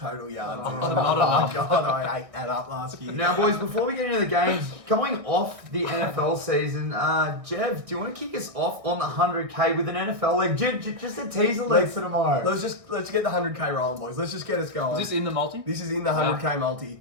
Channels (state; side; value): late; left; 1.6 ms